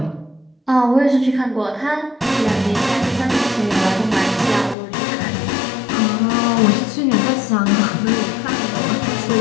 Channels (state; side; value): drops out; right; at 4.8 s